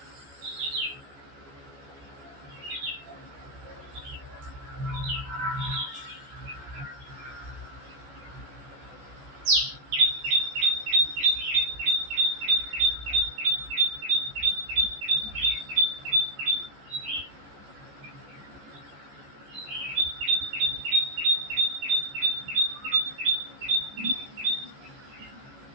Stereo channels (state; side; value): late; left; 14 ms